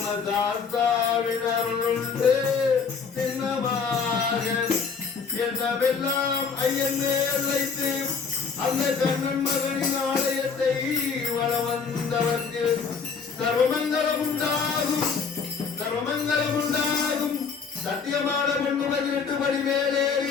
அருளுண்டு சின்னமாக என்னவெல்லாம் ஐயன் மேல் வைத்து அந்த கண்ணன் மகனின் ஆலயத்தை வள வந்தவர்க்கு சர்வமங்கலம் உண்டாகும் சர்வமங்கலம் உண்டாகும் சத்தியமான பொண்ணு 18 படி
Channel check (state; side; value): quieter; right; 5.7 dB